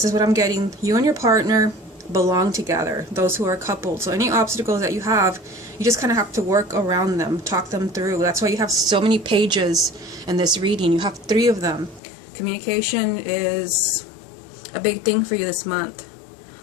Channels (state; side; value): drops out; right; at 12.0 s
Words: is what I'm getting. You and your partner belong together, those who are coupled. So any obstacles that you have, you just kind of have to work around them, talk them through. That's why you have so many pages in this reading. You have 3 of them. Communication is a big thing for you this month.